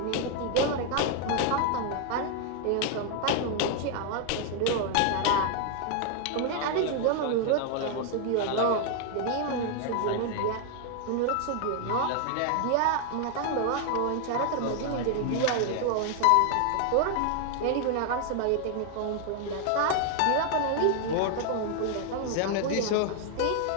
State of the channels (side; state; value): both; different; correlation 0.00